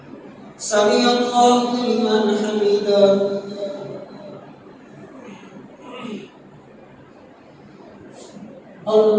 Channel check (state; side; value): identical; both; correlation 1.00